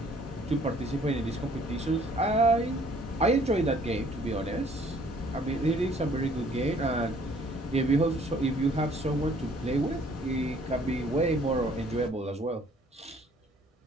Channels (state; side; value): normal; both; correlation 0.59